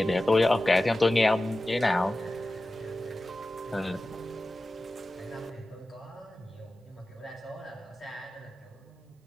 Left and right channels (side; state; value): both; normal; correlation 0.95